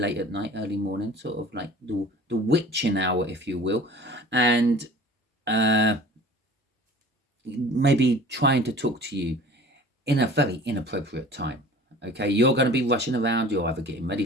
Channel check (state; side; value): normal; both; correlation 0.44